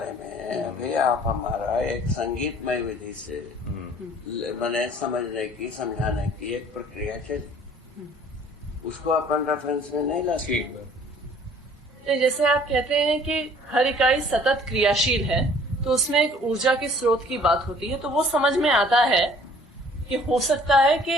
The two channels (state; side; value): normal; both; correlation 0.54